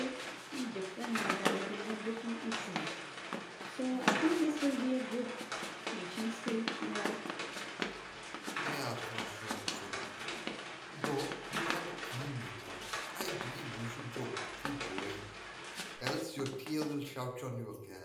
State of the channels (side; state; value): both; identical; correlation 1.00